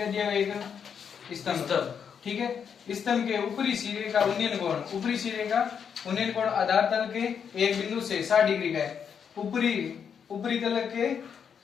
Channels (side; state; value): right; quieter; 7.3 dB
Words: दिया है एक स्तंभ, ठीक है। स्तंभ के ऊपरी सिरे का उन्नयन कोण आधार तल के एक बिंदु से 60 डिग्री का है। ऊपरी तल के